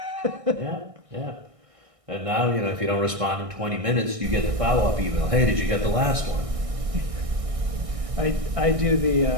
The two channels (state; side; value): late; left; 1.6 ms